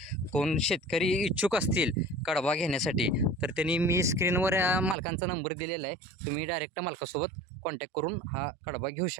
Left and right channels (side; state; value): left; drops out; at 5.0 s